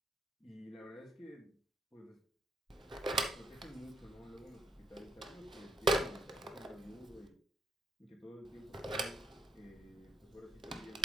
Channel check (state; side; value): normal; both; correlation 0.73